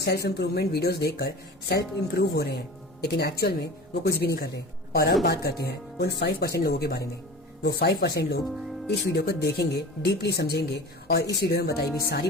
इम्प्रूवमेंट वीडियोस देखकर सेल्फ इम्प्रूव हो रहे हैं, लेकिन एक्चुअल में वो कुछ भी नहीं कर रहे। और अब बात करते हैं उन 5% लोगों के बारे में। वो 5% लोग इस वीडियो को देखेंगे, डीपली समझेंगे और इस वीडियो में बताई हुई सारी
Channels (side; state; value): both; normal; correlation 0.36